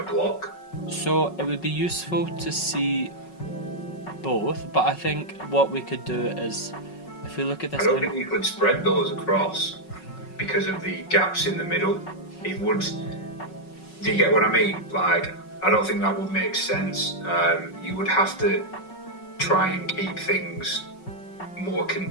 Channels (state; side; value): late; right; 5.4 ms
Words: block? So it would be useful to see both, but I think what we could do is, if we look at this, I don't think you could spread those across because of the gaps in the middle. It would. Do you get what I mean? Like, I don't think that would make sense. You would have to try and keep things more